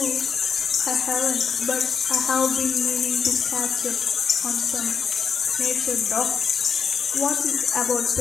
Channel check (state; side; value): quieter; right; 6.3 dB